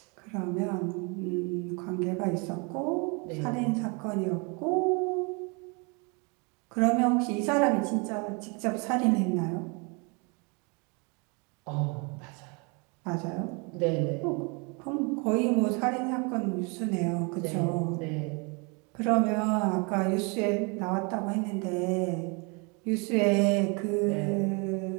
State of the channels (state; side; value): quieter; left; 31.9 dB